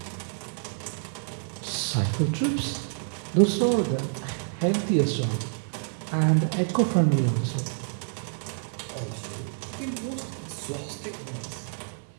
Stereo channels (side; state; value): left; silent; 59 dB below the other